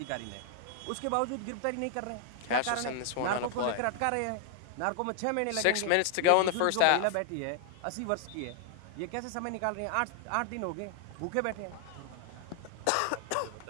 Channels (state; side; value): different; both; correlation 0.00